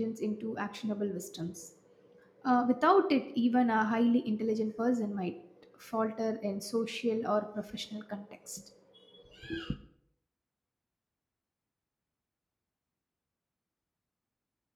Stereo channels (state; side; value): identical; both; correlation 1.00